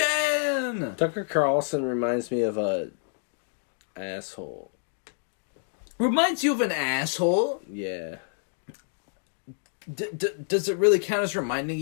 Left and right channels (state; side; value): silent; right; digital silence